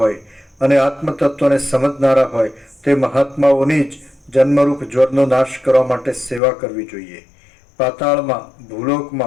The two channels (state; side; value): drops out; right; at 6.4 s